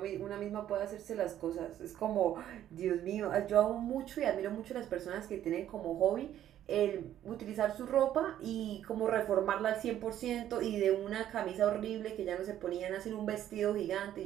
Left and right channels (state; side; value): quieter; left; 11.5 dB